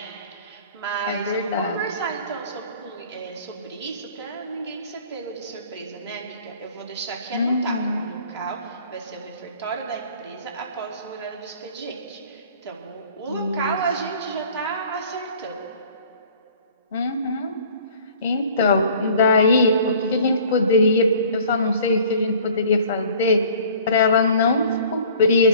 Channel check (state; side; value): inverted; both; correlation -0.50